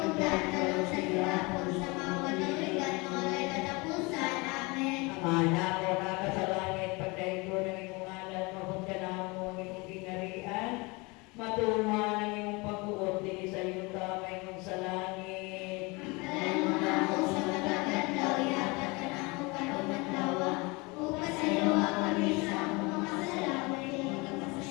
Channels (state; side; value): quieter; right; 26.4 dB